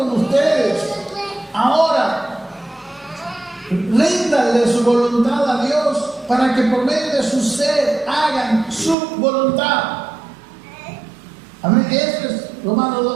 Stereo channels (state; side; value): drops out; left; at 9.0 s